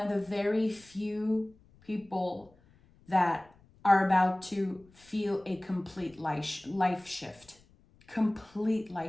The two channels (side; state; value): left; noise; rumble, 29 dB below the sound